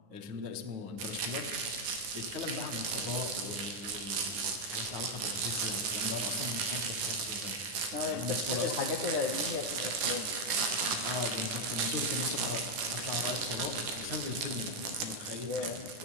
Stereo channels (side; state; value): left; late; 9.9 ms